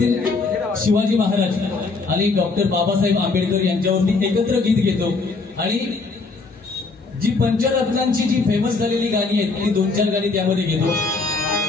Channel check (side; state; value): right; quieter; 4.0 dB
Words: शिवाजी महाराज आणि डॉक्टर बाबासाहेब आंबेडकर यांच्यावरती एकत्र गीत घेतो आणि जी पंचरत्नांची जी फेमस झालेली गाणी आहेत ती 2-4 गाणी त्यामध्ये घेतो.